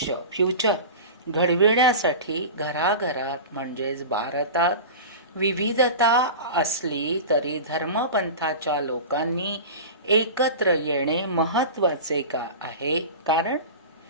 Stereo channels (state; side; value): inverted; both; correlation -0.31